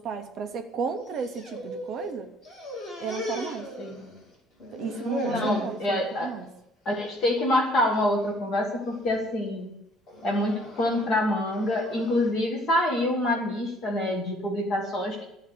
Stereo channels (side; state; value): both; normal; correlation 0.59